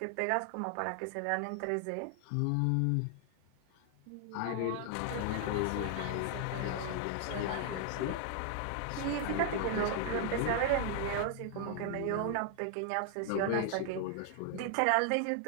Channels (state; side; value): different; both; correlation 0.00